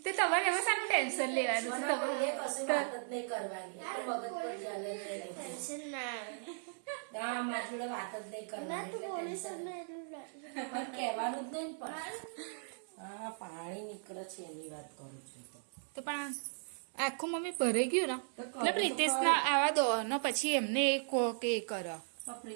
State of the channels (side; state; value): left; silent; 53 dB below the other